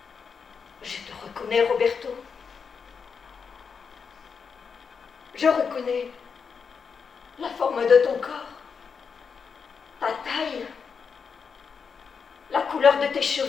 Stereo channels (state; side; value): quieter; right; 5.9 dB